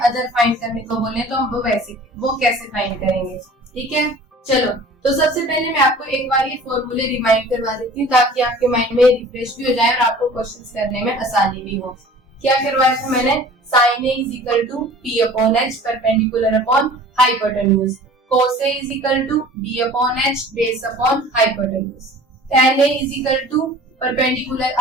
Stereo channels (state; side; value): normal; both; correlation 0.45